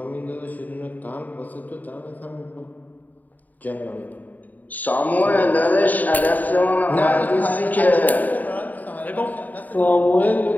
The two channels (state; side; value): late; right; 0.081 ms